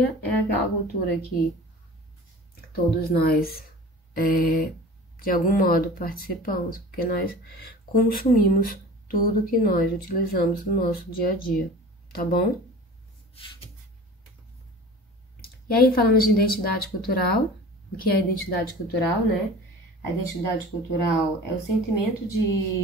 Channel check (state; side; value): normal; both; correlation 0.40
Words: é aquela cultura que todos nós, de algum modo, participamos, porque nós consumimos tudo que nós utilizamos no nosso dia a dia, tá bom? E aí falamos de identidade cultural. O que é identidade cultural, né? A identidade cultural é o sentimento